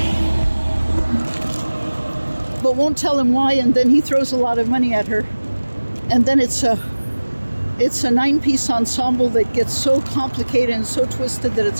but won't tell him why, and then he throws a lot of money at her. And then it's a 9-piece ensemble that gets so complicated and so twisted that it's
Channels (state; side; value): inverted; both; correlation -1.00